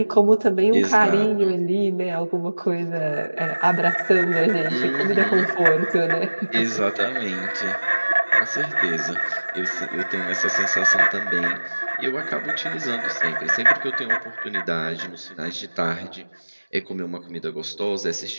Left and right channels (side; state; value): both; inverted; correlation -1.00